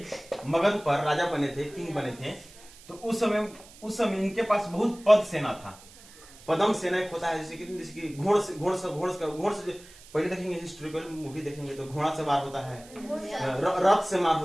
मगध पर, राजा बने थे, किंग बने थे, तो उस समय इनके पास बहुत पद सेना था। पदम सेना एक होता है, जैसे कि घोड़ से पहले देखेंगे, हिस्टोरिकल मूवी देखेंगे तो घोड़ा से मार होता है, रथ से मार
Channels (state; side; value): noise; right; hiss, 22 dB below the sound